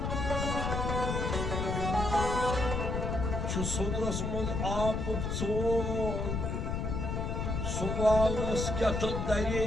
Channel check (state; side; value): noise; left; rumble, 1 dB below the sound